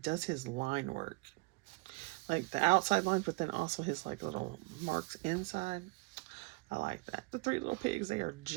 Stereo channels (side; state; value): left; quieter; 26.0 dB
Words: his line work. Like the outside lines, but then also his like little marks inside. I like that. The three little pigs, they are